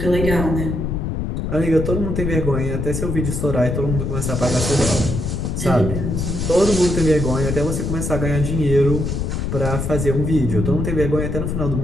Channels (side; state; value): left; noise; rumble, 2 dB below the sound